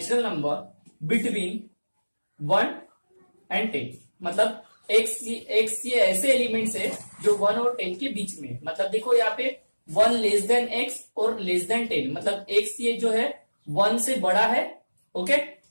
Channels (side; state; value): both; inverted; correlation -1.00